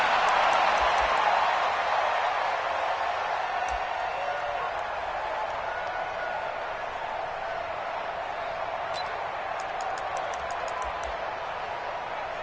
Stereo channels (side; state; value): both; identical; correlation 1.00